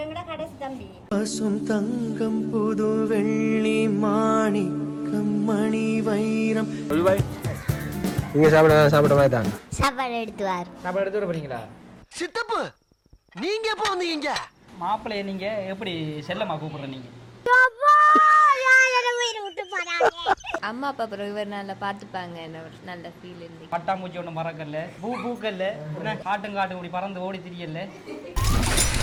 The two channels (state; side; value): identical; both; correlation 1.00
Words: எங்கட கடைசி தம்பி. பசும் தங்கம் புது வெள்ளி மாணிக்கம் மணி வைரம். நீங்க சாப்பிட மாதிரி தான் சாப்பாடு எடுத்துவார். சாப்பாடு எடுத்து வர போறீங்களா? சித்தப்பு நீங்க எப்போ வந்தீங்க? மாப்பிள்ளைய நீங்க எப்படி செல்லமா கூப்பிடுற நீங்க? அம்மா அப்பா அப்புறம் இவர் நல்லா பார்த்துப்பாங்க. நல்ல ஃபீல் இருந்து பட்டாம்பூச்சி ஒன்றும் பறக்கல, பூக்கல்ல, காட்டும் இப்படி பறந்து ஓடி திரியல.